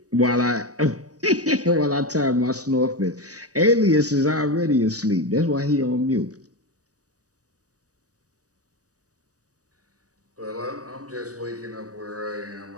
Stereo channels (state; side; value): late; left; 0.66 ms